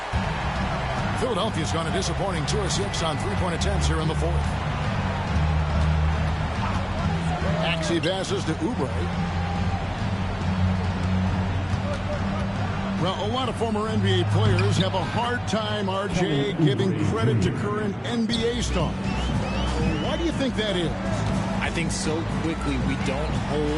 Philadelphia's gone a disappointing 2 of 6 on three-point attempts here in the fourth. Maxey passes to Oubre. Well, a lot of former NBA players have a hard time, RJ, giving credit to current NBA stars. Why do you think that is? I think so quickly we don't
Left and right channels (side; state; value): both; identical; correlation 1.00